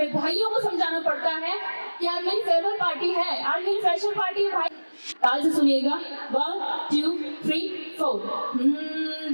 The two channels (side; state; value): both; inverted; correlation -1.00